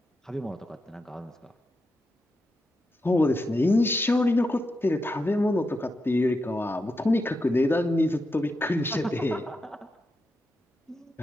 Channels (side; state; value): both; normal; correlation 0.86